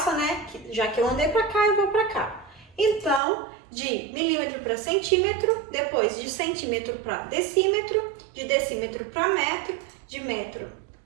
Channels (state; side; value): drops out; left; at 3.2 s